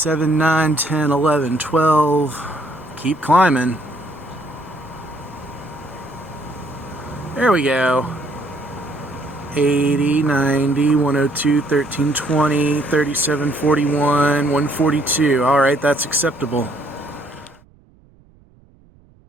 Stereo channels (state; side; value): noise; right; rumble, 30 dB below the sound